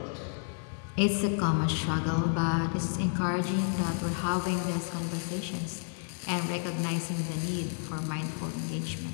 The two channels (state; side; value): silent; right; 57 dB below the other